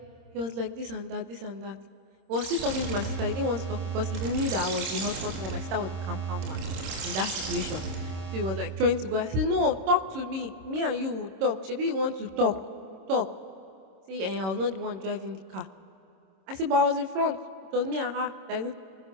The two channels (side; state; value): left; late; 26 ms